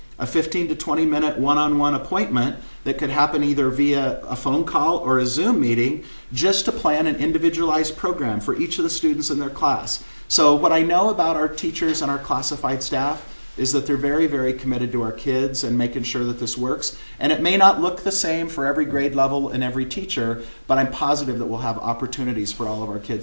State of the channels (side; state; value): both; inverted; correlation -1.00